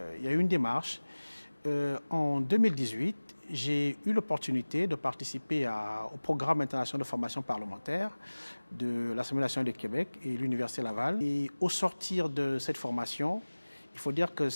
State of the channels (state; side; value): inverted; both; correlation -1.00